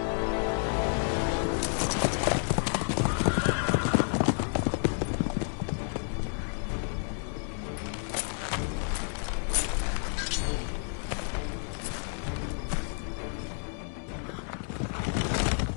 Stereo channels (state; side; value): silent; right; 58 dB below the other